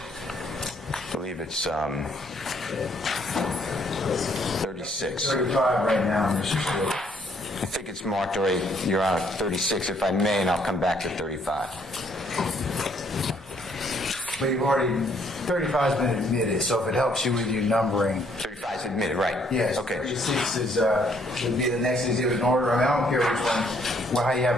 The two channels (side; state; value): both; normal; correlation 0.67